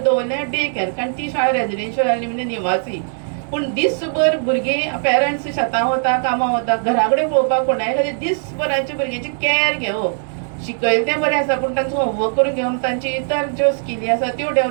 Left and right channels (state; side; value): silent; left; 66 dB below the other